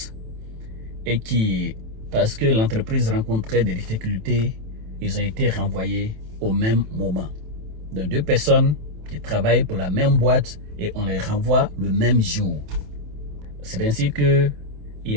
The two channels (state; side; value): late; left; 27 ms